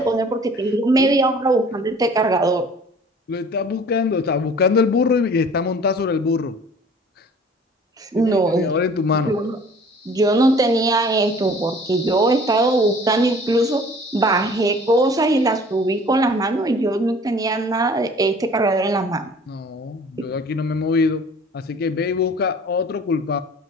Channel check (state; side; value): normal; both; correlation 0.49